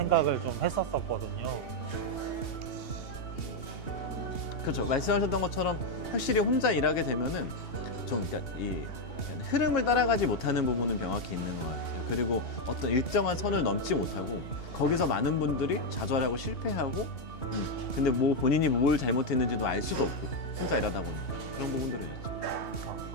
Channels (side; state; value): right; late; 2.8 ms